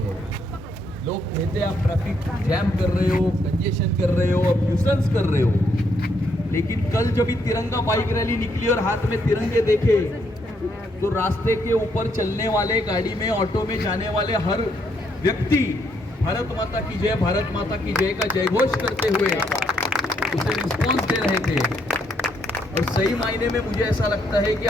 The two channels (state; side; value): normal; both; correlation 0.74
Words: लोग कहते हैं आप ट्रैफिक जैम कर रहे हो, कंजेशन कर रहे हो, अब न्यूसेंस कर रहे हो। लेकिन कल जब ये तिरंगा बाइक रैली निकली और हाथ में तिरंगे देखे तो रास्ते के ऊपर चलने वाले, गाड़ी में, ऑटो में जाने वाले हर व्यक्ति भारत माता की जय, भारत माता की जय का जयघोष करते हुए उसे रिस्पॉन्स दे रहे थे। और सही मायने में मुझे ऐसा लगता है कि